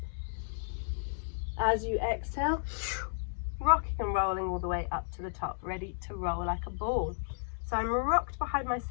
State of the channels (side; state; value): right; silent; digital silence